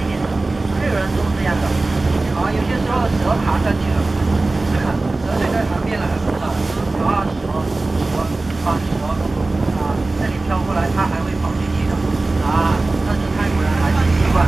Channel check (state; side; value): quieter; left; 3.2 dB